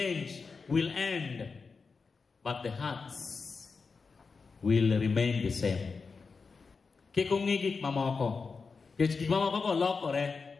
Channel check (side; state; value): right; quieter; 4.8 dB